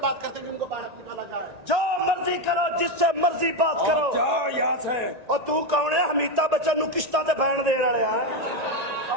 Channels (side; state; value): left; late; 1.9 ms